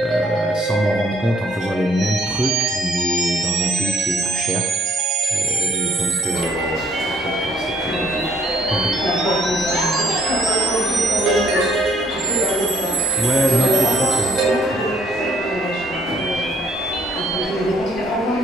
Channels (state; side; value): normal; both; correlation 0.63